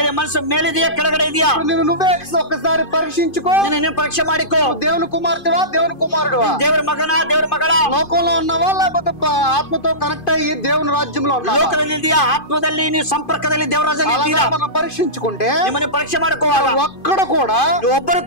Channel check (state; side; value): late; right; 2.5 ms